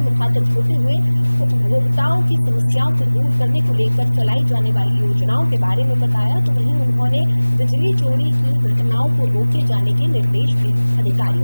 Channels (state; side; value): inverted; both; correlation -1.00